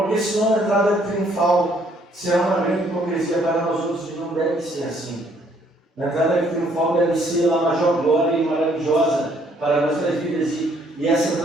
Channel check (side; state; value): both; normal; correlation 0.65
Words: senão a entrada triunfal será uma grande hipocrisia para nós outros, e não deve ser assim. A entrada triunfal deve ser a maior glória e maravilhosa para nossas vidas, e essa